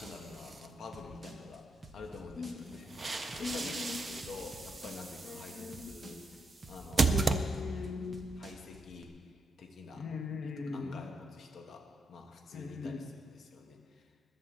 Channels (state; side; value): normal; both; correlation 0.81